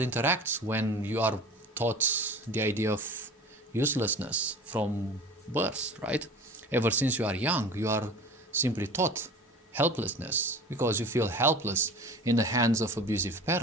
interact when you are taught the idea of uselessness from birth, right? Ever since you are young, you are simply taught helplessness because you feel helpless in the hands of abusive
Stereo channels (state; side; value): normal; both; correlation 0.39